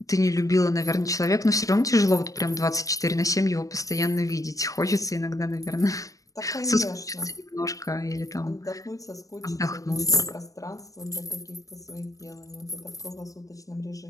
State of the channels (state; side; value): late; right; 0.16 ms